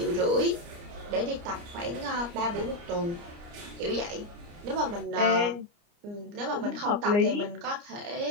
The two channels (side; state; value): left; late; 29 ms